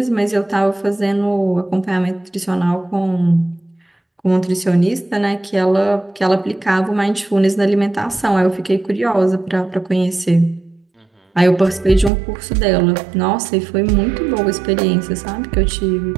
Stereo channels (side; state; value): left; drops out; at 12.1 s